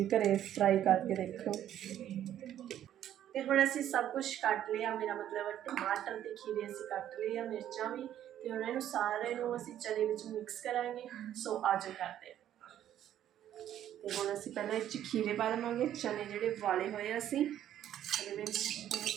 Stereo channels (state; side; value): quieter; left; 11.2 dB